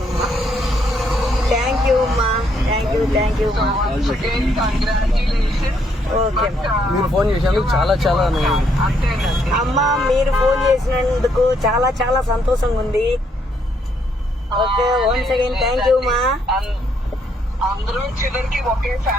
థ్యాంక్ యూ అమ్మా, థ్యాంక్ యూ మా. ఓకే మీరు ఫోన్ చేసినందుకు చాలా చాలా అమ్మా, మీరు ఫోన్ చేసినందుకు చాలా చాలా సంతోషంగా ఉంది. Okay, once again thank you మా. అందరూ చివరికి ఒకే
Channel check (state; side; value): normal; both; correlation 0.72